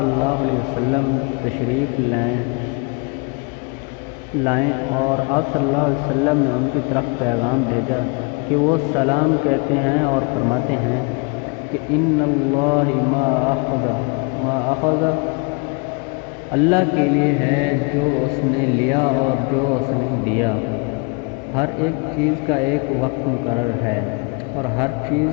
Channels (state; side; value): quieter; right; 31.7 dB